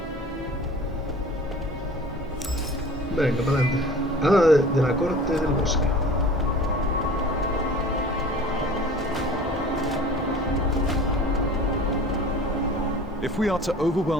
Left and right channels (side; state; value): both; normal; correlation 0.43